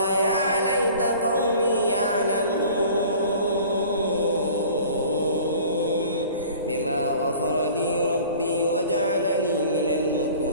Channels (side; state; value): both; inverted; correlation -0.46